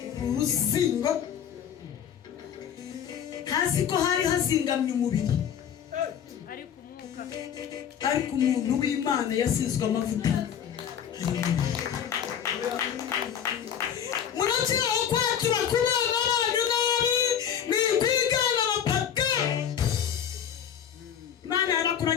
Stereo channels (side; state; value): right; quieter; 8.8 dB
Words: uruzingo hasi ko hari hazingamye umubiri ariko umuntu w'Imana yasizwe amavuta. Munakiraho kwakira kubana n'abantu nabi ni kwigana abapaka. Imana